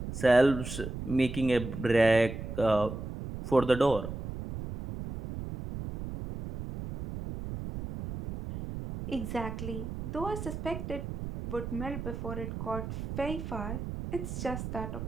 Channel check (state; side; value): noise; right; rumble, 7 dB below the sound